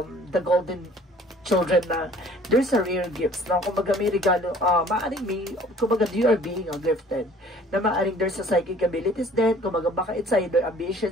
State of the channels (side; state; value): both; normal; correlation 0.53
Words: golden children na there's a rare gifts. Na kumbaga may regalo, kumbaga you are being gifted. Na maaring there's a psychic abilities then, kumbaga baka it's either